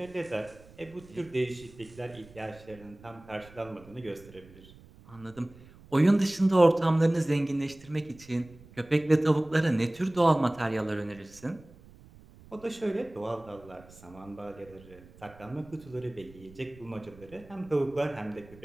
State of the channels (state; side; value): noise; right; rumble, 22 dB below the sound